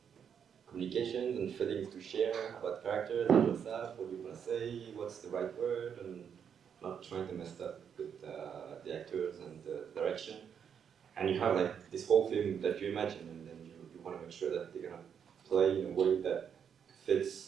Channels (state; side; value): quieter; left; 7.7 dB